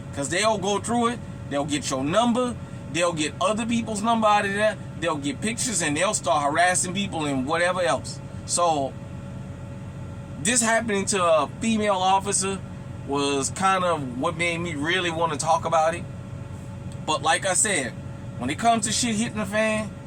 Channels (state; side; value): identical; both; correlation 1.00